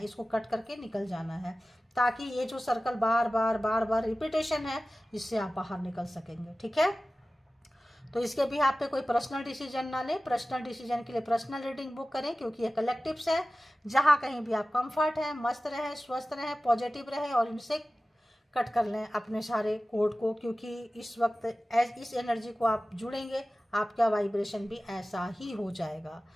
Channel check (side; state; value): both; normal; correlation 0.96